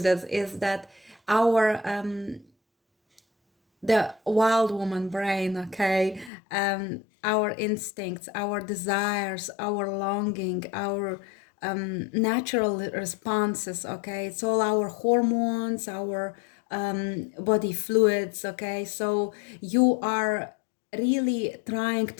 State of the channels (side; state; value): right; drops out; at 6.3 s